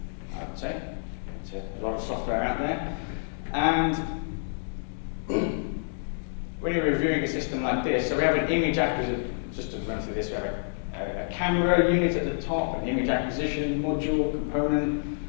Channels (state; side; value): silent; right; digital silence